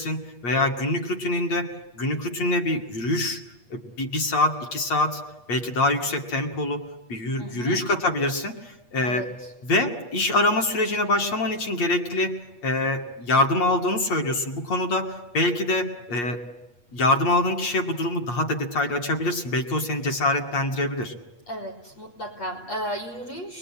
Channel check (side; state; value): right; late; 8.4 ms